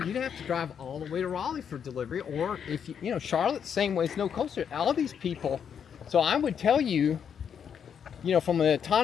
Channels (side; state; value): right; quieter; 7.7 dB